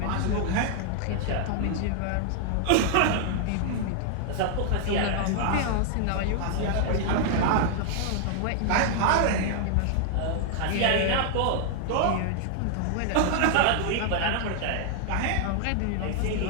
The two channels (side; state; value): both; different; correlation 0.00